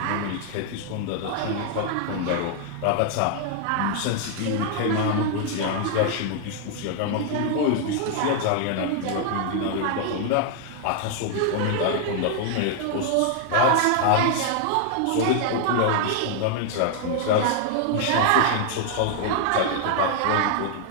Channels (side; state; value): both; different; correlation 0.00